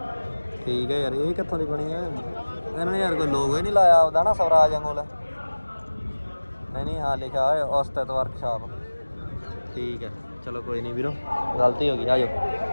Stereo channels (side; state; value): both; inverted; correlation -1.00